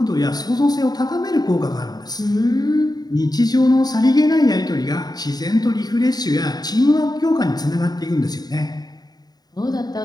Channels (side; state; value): right; late; 0.19 ms